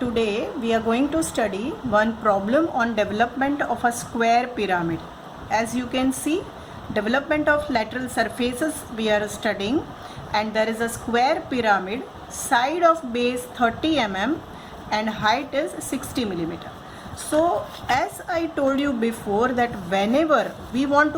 we are going to study one problem on development of a square pyramid. As you can see, development of lateral surfaces we are studying, and there is a square pyramid, side of base 30 mm and height is 60 millimeter. So as I told you before that whenever we want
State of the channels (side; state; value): both; identical; correlation 1.00